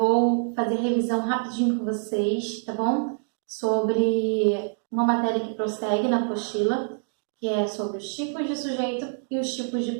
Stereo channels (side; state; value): left; silent; 61 dB below the other